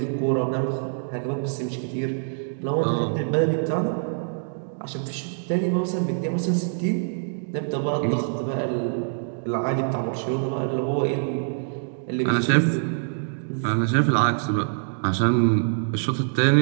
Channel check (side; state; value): left; silent; digital silence